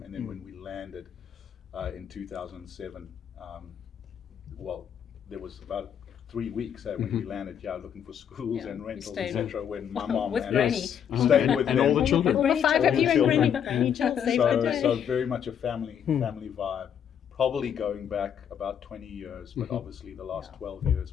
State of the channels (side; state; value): right; quieter; 8.5 dB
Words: And then when we landed in 2007, there was about 3 weeks when we landed, looking for schools and rentals, etc. When my mom with and Granny. us stayed with and them. all the children. All the 5 of you and Granny. Granny Jill saved the day. So very much a family vibe. Probably going back about 20 years, but obviously the last 12